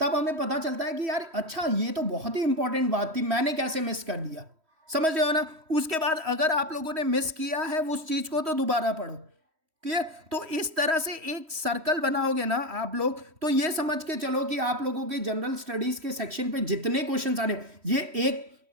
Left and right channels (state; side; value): late; left; 3.1 ms